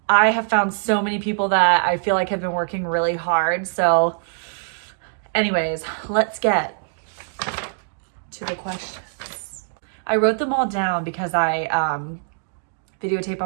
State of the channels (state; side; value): silent; left; digital silence